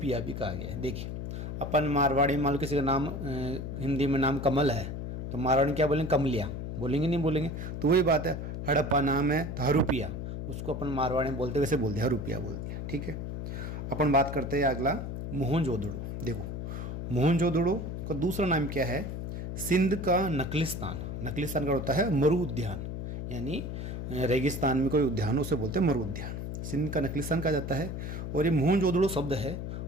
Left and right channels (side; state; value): left; noise; hum, 5 dB below the sound